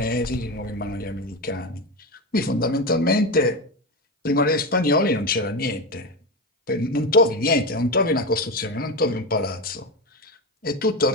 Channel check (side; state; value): both; normal; correlation 0.17